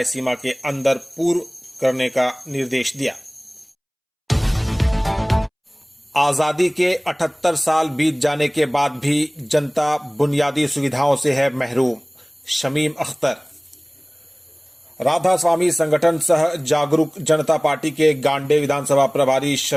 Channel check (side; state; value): both; identical; correlation 1.00